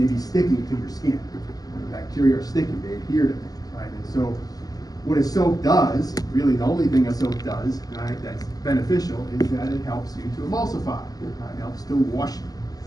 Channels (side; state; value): right; late; 0.18 ms